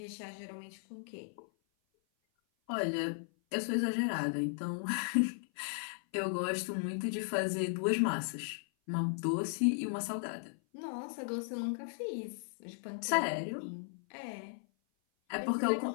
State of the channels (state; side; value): silent; right; 54 dB below the other